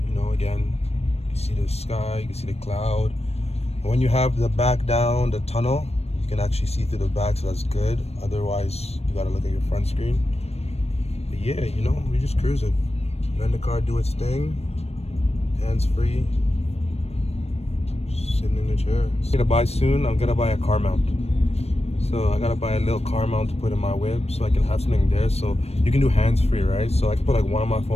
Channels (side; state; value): right; late; 0.30 ms